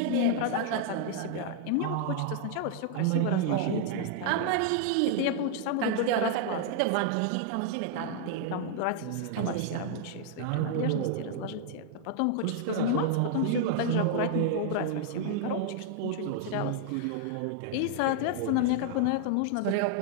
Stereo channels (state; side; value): different; both; correlation 0.00